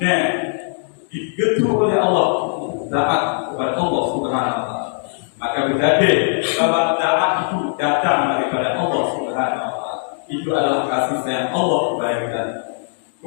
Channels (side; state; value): right; silent; digital silence